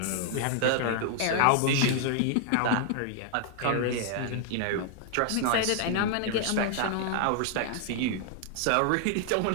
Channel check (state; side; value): different; both; correlation 0.00